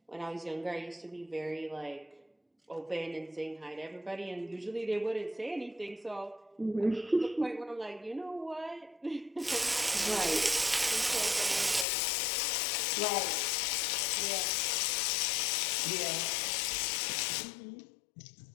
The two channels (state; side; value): drops out; right; at 11.9 s